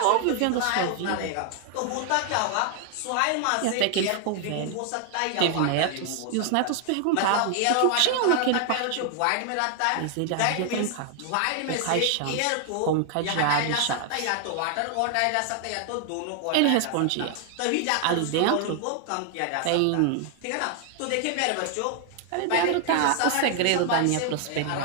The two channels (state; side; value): different; both; correlation 0.00